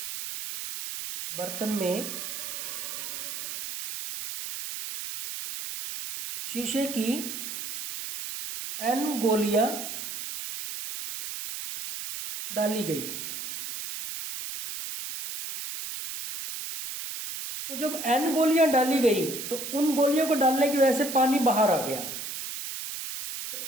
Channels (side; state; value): right; noise; hiss, 7 dB below the sound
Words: में शीशे की n गोलियां डाली गई। तो जब n गोलियां डाली गई तो उन गोलियों को डालने की वजह से पानी बाहर आ गया। तो